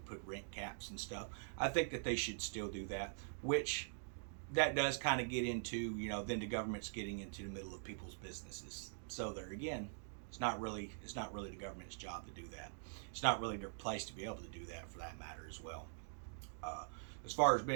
put rent caps and stuff, I think that they should still do that, which that does kind of get into, you know, then the government's getting into the middle of people's businesses. So there again, it's not really the government's job to do that. It's not really their place to be able to do that, for that matter as well. as far as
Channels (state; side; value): silent; left; digital silence